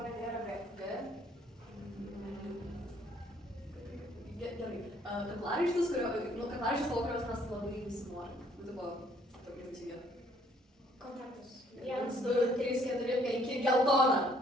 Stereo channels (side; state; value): both; normal; correlation 0.63